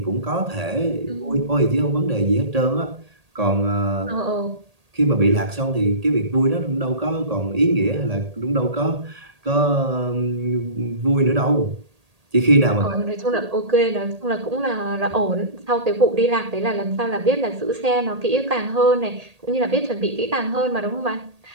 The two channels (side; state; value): left; late; 1.8 ms